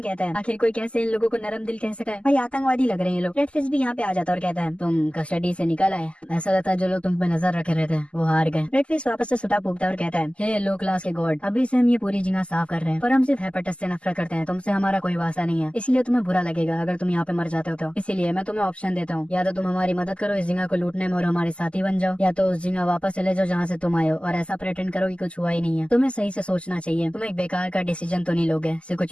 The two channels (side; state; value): right; late; 0.055 ms